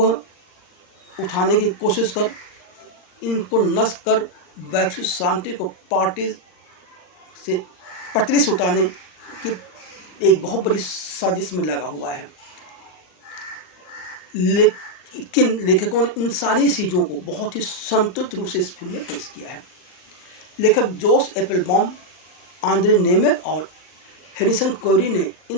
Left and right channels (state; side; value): late; right; 39 ms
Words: उठाने की कोशिश कर इनको नष्ट कर वैश्विक शांति को पटरी से उतारने की एक बहुत बड़ी साजिश में लगा हुआ है। लेकिन लेखकों ने इन सारी चीज़ों को बहुत ही संतुलित रूप से इस फिल्म में पेश किया है। लेखक जोश एप्पलबॉम, आंद्रे नेमेक और हैरिसन कोरी ने